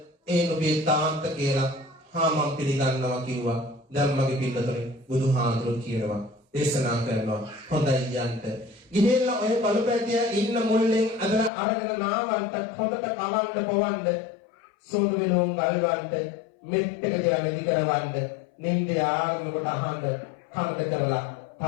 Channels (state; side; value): drops out; right; at 11.5 s